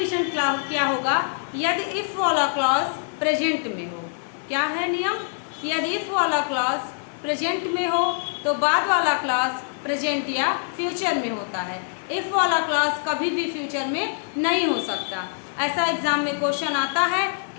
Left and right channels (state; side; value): silent; right; 61 dB below the other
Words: क्या होगा, यदि इफ वाला क्लॉज प्रेजेंट में हो। क्या है नियम, यदि इफ वाला क्लॉज प्रेजेंट में हो तो बाद वाला क्लॉज प्रेजेंट या फ्यूचर में होता है। इफ वाला क्लॉज कभी भी फ्यूचर में नहीं हो सकता। ऐसा एग्जाम में क्वेश्चन आता है